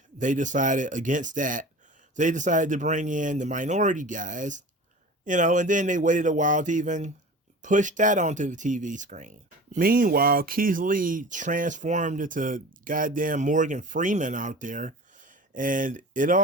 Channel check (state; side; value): normal; both; correlation 0.37